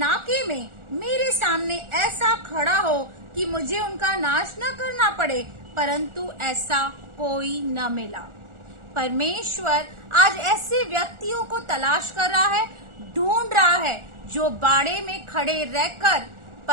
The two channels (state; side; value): late; left; 1.4 ms